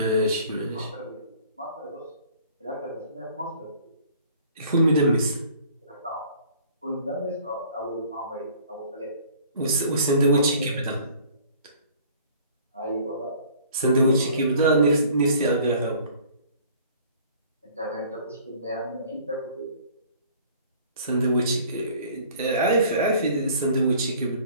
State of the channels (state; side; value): inverted; both; correlation -0.52